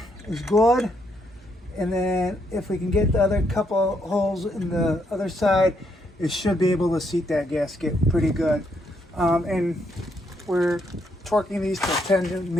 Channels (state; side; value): normal; both; correlation 0.75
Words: is good, and then if we can get the other couple holes in the other side, it should be able to seat that gasket pretty good. And we're torquing these to 10